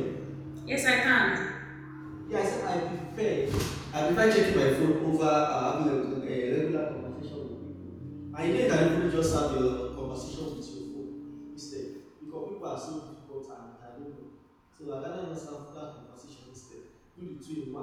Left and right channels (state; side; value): identical; both; correlation 1.00